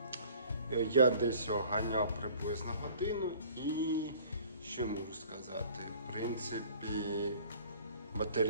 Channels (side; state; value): both; inverted; correlation -0.51